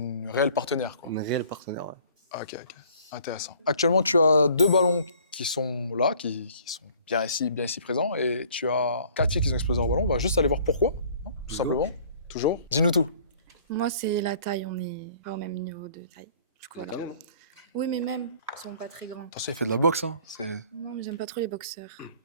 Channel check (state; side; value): inverted; both; correlation -0.54